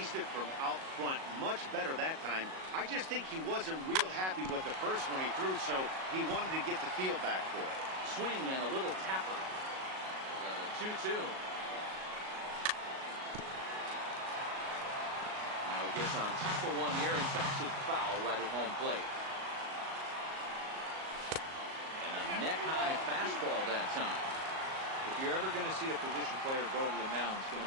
it from out front much better that time. I just think he wasn't real happy with the first one he threw, so he wanted to get the feel back for it. Swing and a little tapper. 2-2. Now he gets on top of one here and chops it foul right at home plate. neck-high fastball that time. If you're ever going to see a position player go to the mound, it's going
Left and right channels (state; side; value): late; left; 37 ms